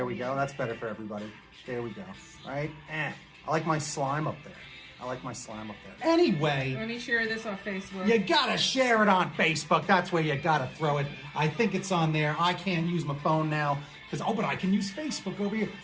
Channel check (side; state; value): both; identical; correlation 1.00